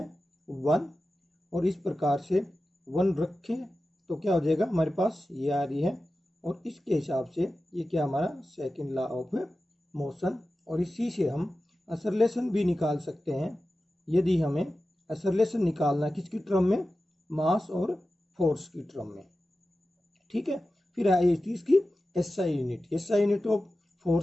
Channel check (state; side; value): normal; both; correlation 0.94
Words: 1, और इस प्रकार से 1 रखें तो क्या हो जाएगा हमारे पास ये आ रही है। और इसके हिसाब से ये क्या हमारा सेकंड लॉ ऑफ मोशन। और इसी से हम एक्सेलरेशन भी निकाल सकते हैं यदि हमें एक्सेलरेशन निकालना किसकी टर्म में, मास और फोर्स की टर्म में, ठीक है। फिर आई इसकी SI unit, SI unit of